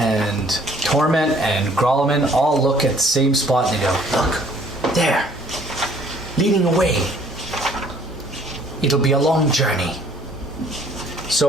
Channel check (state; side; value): normal; both; correlation 0.59